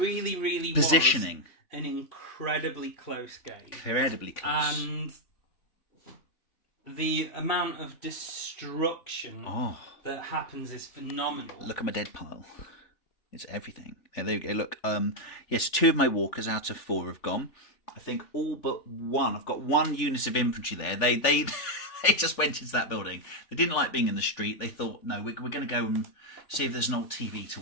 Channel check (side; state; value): right; late; 3.4 ms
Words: really positioning. Was an incredibly close game. Incredibly close. And the amount of destruction that happens is phenomenal. Look at my dead pile. It's everything. There you go. Look, yes, 2 of my walkers out of 4 have gone. I think all but 1. I've got 1 unit of infantry there. They they just went into that building. They didn't like being in the street. They thought, no, we're going to go and see if there's an old TV to